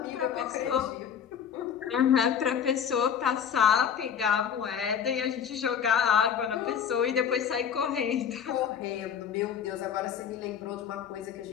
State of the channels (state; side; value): quieter; right; 8.1 dB